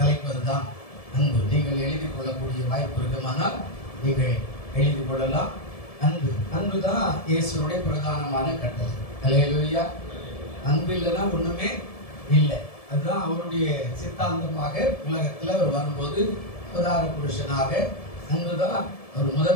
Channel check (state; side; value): late; right; 1.7 ms